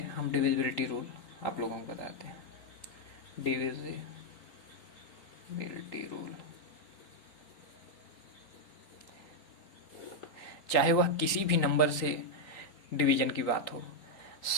हम डिविजिबिलिटी रूल आप लोगों को बताते हैं। डिविजिबिलिटी रूल, चाहे वह किसी भी नंबर से डिवीजन की बात हो,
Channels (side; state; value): right; late; 3.9 ms